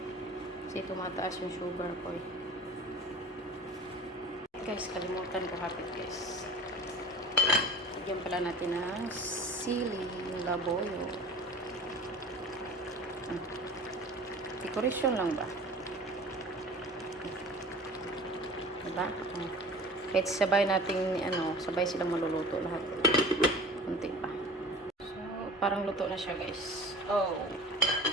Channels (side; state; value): both; normal; correlation 0.40